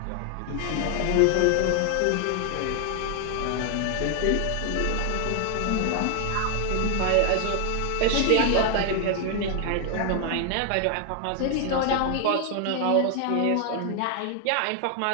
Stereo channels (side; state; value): both; different; correlation 0.00